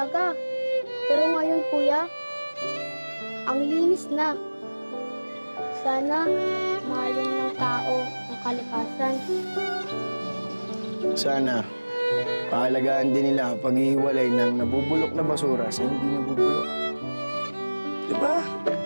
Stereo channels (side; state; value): both; inverted; correlation -1.00